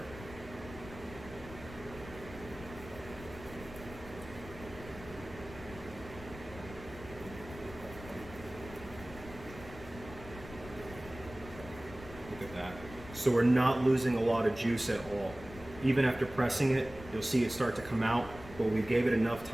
at that. So we're not losing a lot of juice at all. Even after pressing it, you'll see it start to come out, but we gave it enough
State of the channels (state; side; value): noise; left; rumble, 15 dB below the sound